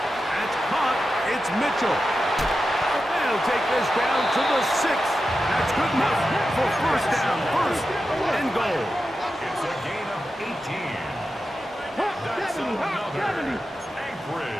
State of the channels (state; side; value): normal; both; correlation 0.91